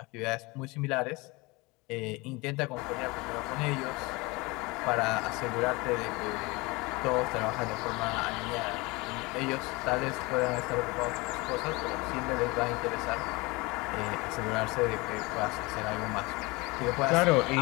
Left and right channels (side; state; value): right; quieter; 24.6 dB